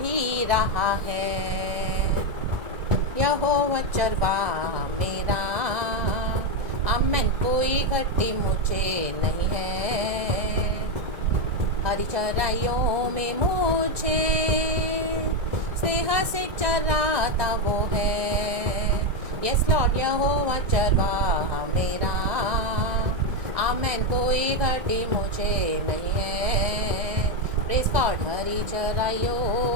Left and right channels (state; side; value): late; left; 1.8 ms